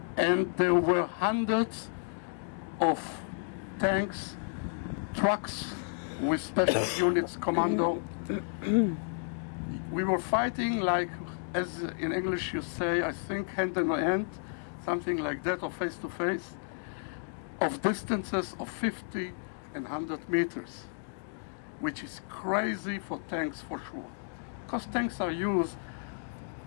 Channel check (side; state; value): right; silent; digital silence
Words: And there were hundreds of tanks, trucks with special units, commando. We were fighting like, as in English you say, I think hand in hand, something like that, or face to face, of distances of 50 and 100 meters, which is crazy for tanks for sure. Because tanks are used